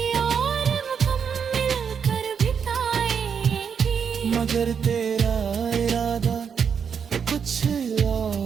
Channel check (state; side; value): quieter; left; 6.9 dB